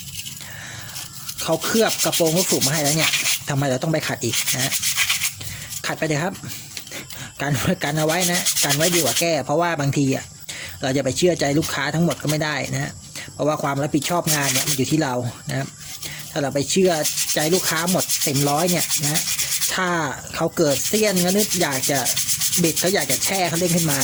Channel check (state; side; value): identical; both; correlation 1.00